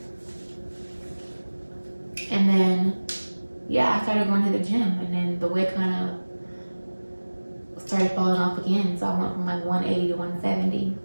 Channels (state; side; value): inverted; both; correlation -1.00